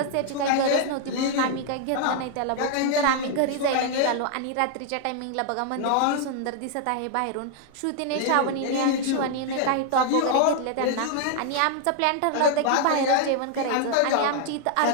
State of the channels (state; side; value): different; both; correlation 0.00